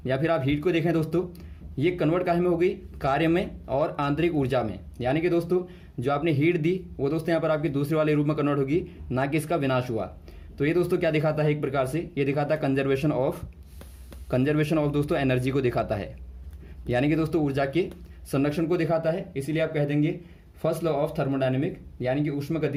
या फिर आप हीट को देखें दोस्तों, ये कन्वर्ट काहे में हो गई, कार्य में और आंतरिक ऊर्जा में, यानी कि दोस्तों जो आपने हीट दी वो दोस्तों यहाँ पर आपकी दूसरे वाले रूप में कन्वर्ट होगी, ना कि इसका विनाश हुआ। तो ये दोस्तों क्या दिखाता है, एक प्रकार से ये दिखाता है कंजर्वेशन ऑफ दोस्तों एनर्जी को दिखाता है, यानी कि दोस्तों ऊर्जा के संरक्षण को दिखाता है। इसीलिए आप कह देंगे फर्स्ट लॉ ऑफ थर्मोडायनेमिक, यानी कि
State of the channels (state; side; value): identical; both; correlation 1.00